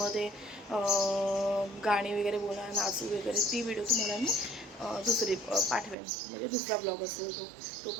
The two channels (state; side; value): drops out; left; at 6.0 s